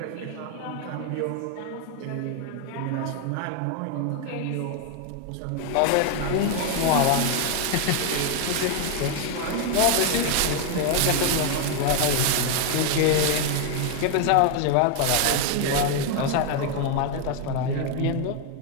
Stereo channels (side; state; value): both; different; correlation 0.01